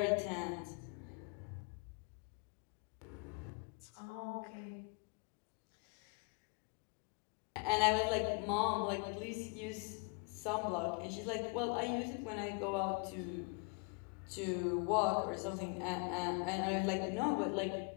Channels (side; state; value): right; quieter; 34.3 dB